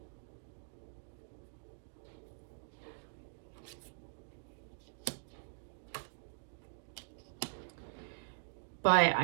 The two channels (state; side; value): silent; left; digital silence